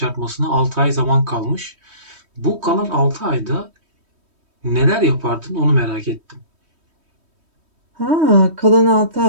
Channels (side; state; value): left; late; 3.1 ms